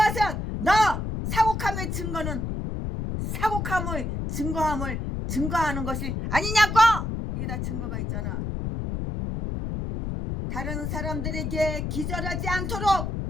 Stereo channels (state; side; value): noise; left; rumble, 3 dB below the sound